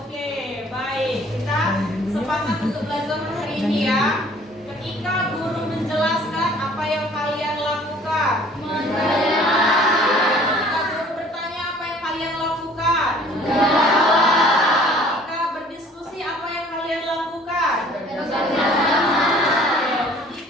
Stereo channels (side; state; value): both; normal; correlation 0.53